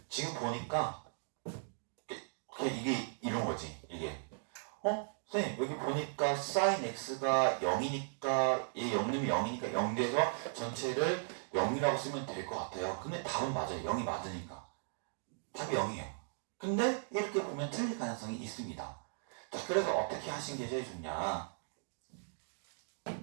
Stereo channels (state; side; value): silent; left; digital silence